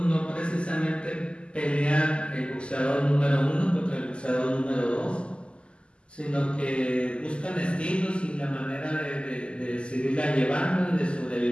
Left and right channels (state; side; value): late; right; 0.052 ms